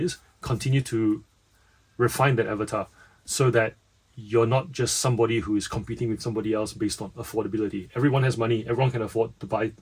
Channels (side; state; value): both; identical; correlation 1.00